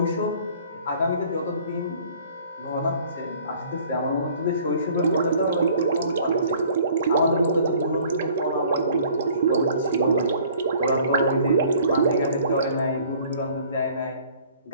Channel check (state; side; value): inverted; both; correlation -0.54